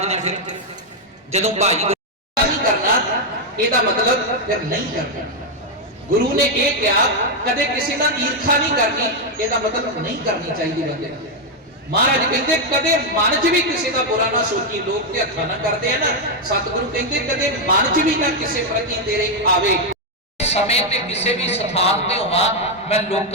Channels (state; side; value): normal; both; correlation 0.01